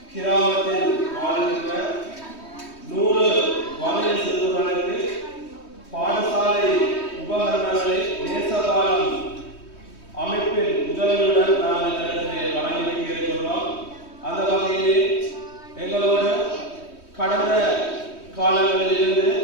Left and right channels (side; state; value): right; late; 3.2 ms